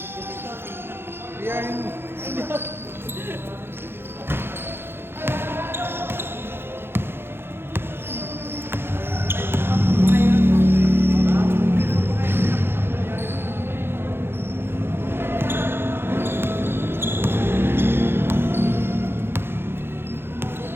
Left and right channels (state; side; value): late; left; 0.11 ms